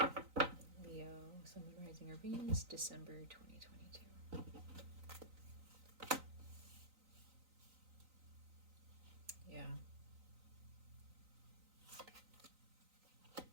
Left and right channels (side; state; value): left; late; 3.9 ms